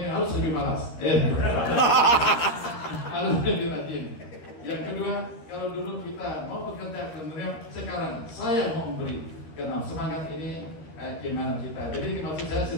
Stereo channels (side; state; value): right; late; 13 ms